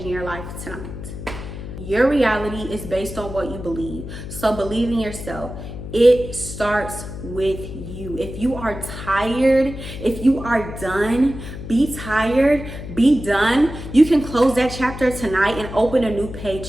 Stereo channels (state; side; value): noise; left; hum, 10 dB below the sound